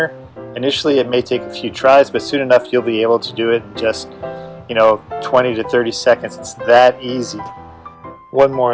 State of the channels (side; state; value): both; identical; correlation 1.00